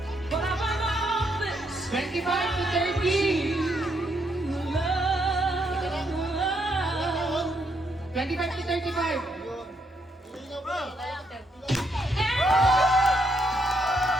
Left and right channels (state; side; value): normal; both; correlation 0.75